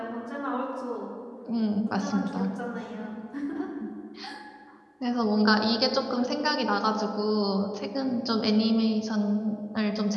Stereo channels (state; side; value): identical; both; correlation 1.00